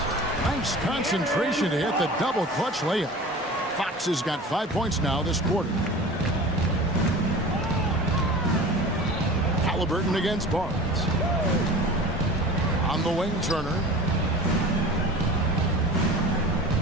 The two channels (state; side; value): normal; both; correlation 0.37